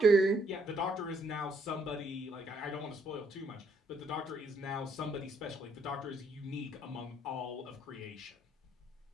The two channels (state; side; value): normal; both; correlation 0.69